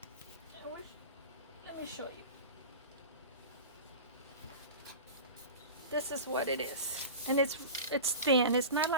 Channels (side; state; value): both; inverted; correlation -0.31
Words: me show you. This is what it is. And it's thin. It's not